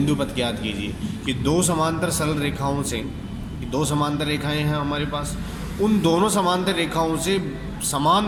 पथ ज्ञात कीजिए। कि दो समांतर सरल रेखाओं से, दो समांतर रेखाएं हैं हमारे पास, उन दोनों समांतर रेखाओं से समान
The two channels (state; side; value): identical; both; correlation 1.00